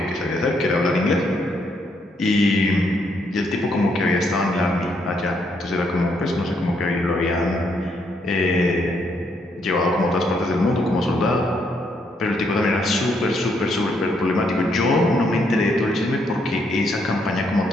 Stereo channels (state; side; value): normal; both; correlation 0.74